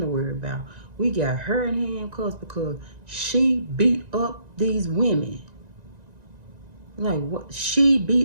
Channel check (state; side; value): late; left; 1.9 ms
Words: worry about. We got her in handcuffs because she beat up these women. Like, what? She